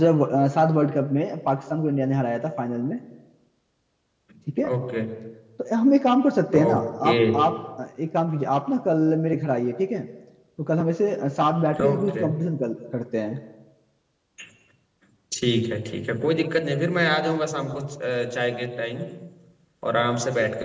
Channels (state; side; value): identical; both; correlation 1.00